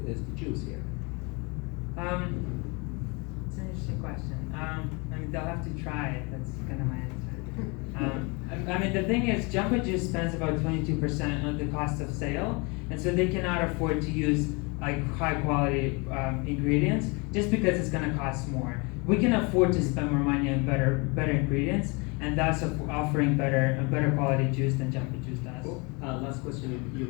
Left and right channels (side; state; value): right; quieter; 29.5 dB